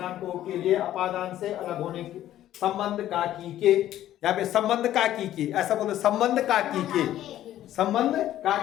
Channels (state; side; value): quieter; right; 12.8 dB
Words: को, के लिए, अपादान से अलग होने के, संबंध का की के। यहाँ पे संबंध का की के, ऐसा बोलते संबंध का की के, संबंध का